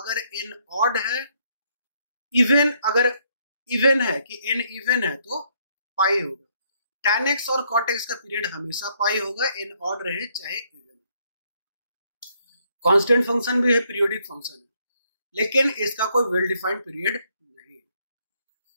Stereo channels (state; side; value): inverted; both; correlation -0.71